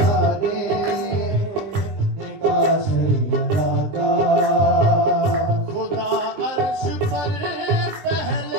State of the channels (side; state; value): left; late; 20 ms